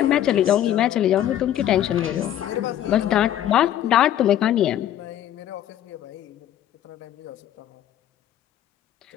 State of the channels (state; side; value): quieter; right; 11.6 dB